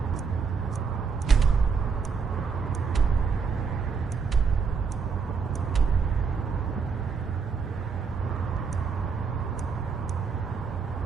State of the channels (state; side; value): quieter; left; 5.5 dB